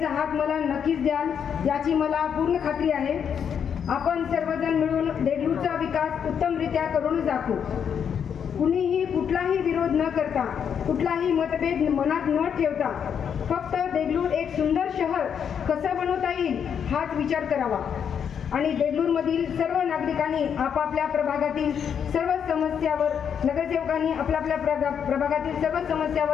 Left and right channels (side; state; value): right; quieter; 7.8 dB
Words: हात मला नक्कीच द्याल याची मला पूर्ण खात्री आहे. आपण सर्वजण मिळून देगलूरचा विकास उत्तमरित्या करून दाखवू. कुणीही कुठलाही विरोध न करता, कुठलाही मतभेद मनात न ठेवता फक्त देगलूर एक सुंदर शहर कसं बनवता येईल हाच विचार करावा आणि देगलूरमधील सर्व नागरिकांनी आपापल्या प्रभागातील सर्व समस्यावर, नगरसेवकांनी आपल्या प्रभागातील सर्व